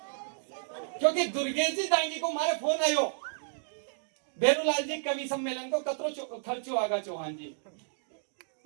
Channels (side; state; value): left; silent; digital silence